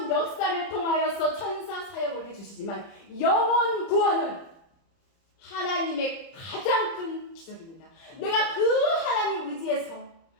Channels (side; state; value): right; late; 30 ms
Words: 역사를 통하여서 천사 사역을 해주시지만 영혼 구원은 하나님의 가장 큰 기적입니다. 내가 그 하나님 의지해서